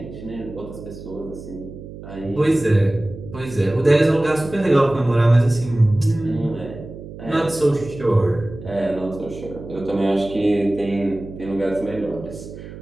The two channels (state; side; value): noise; right; hum, 13 dB below the sound